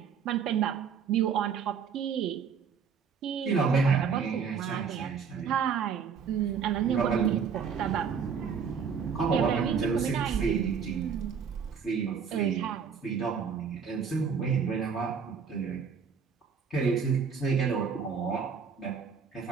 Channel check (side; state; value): left; quieter; 6.5 dB